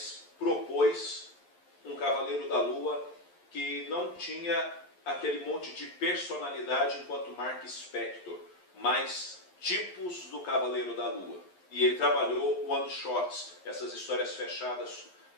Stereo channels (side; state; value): right; late; 11 ms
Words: propôs um Cavaleiro da Lua que não tinha aquele monte de personalidade enquanto Mark Spector, mas tipos do Cavaleiro da Lua. E ele trabalhou one-shots, essas histórias fechadas,